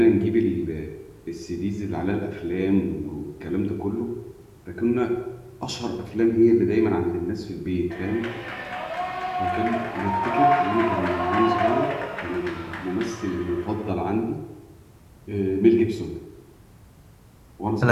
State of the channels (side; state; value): both; identical; correlation 1.00